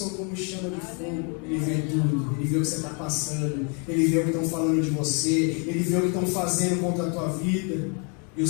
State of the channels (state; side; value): quieter; right; 36.7 dB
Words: como chama de fogo. Ele vê tudo, ele vê o que você está passando, ele vê o que estão falando de você, ele vê o que estão fazendo contra a tua vida. E